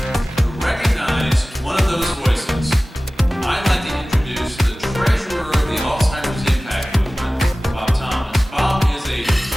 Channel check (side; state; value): both; normal; correlation 0.97